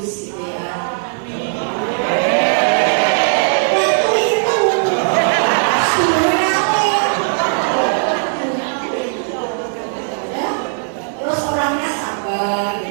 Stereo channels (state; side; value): silent; left; 65 dB below the other